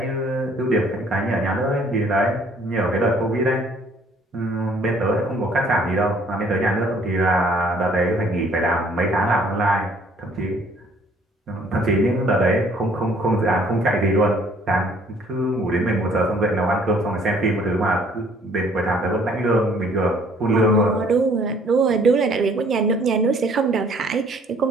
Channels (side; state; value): both; normal; correlation 0.60